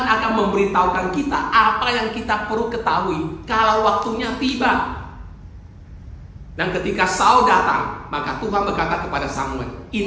akan memberitahukan kita apa yang kita perlu ketahui kalau waktunya tiba. Dan ketika Saul datang, maka Tuhan berkata kepada Samuel,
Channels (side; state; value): both; identical; correlation 1.00